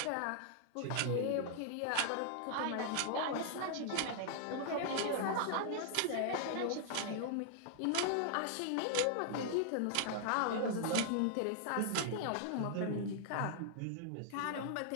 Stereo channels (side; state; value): both; different; correlation -0.01